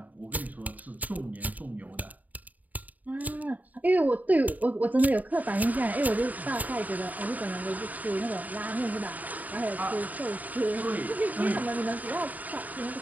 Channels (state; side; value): late; left; 0.077 ms